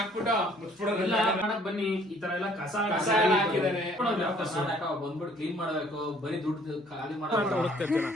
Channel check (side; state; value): both; normal; correlation 0.59